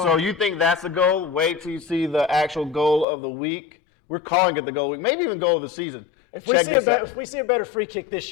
that's the goal. Wait till you see the actual goal of the week. We're calling it the goal of the week, maybe even goal of the season. If we see a better free kick this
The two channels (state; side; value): drops out; right; at 3.1 s